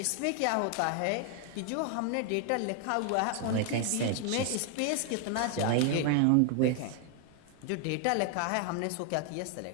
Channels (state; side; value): different; both; correlation 0.00